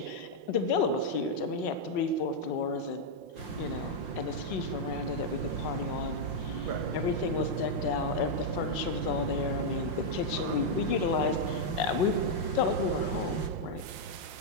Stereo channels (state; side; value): late; left; 5.7 ms